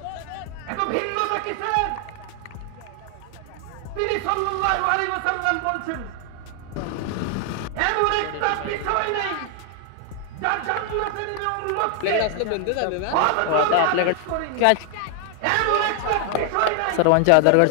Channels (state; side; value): different; both; correlation 0.00